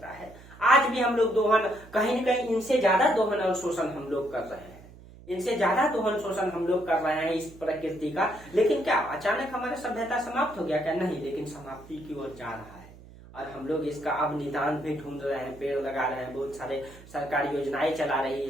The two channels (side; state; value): right; noise; hum, 20 dB below the sound